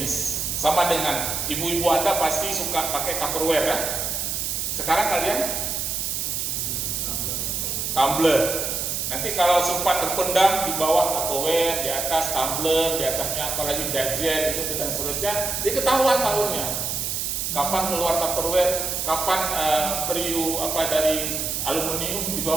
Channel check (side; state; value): right; noise; hiss, 1 dB below the sound